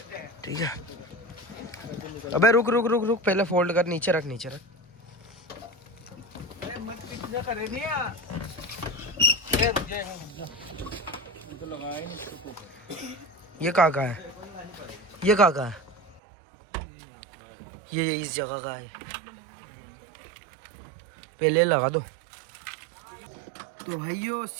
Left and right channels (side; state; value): left; drops out; at 16.2 s